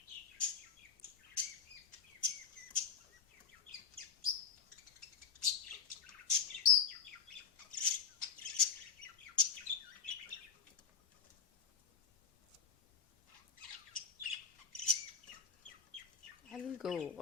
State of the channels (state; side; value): quieter; right; 6.3 dB